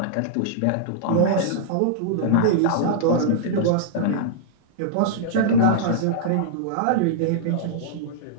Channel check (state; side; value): different; both; correlation -0.02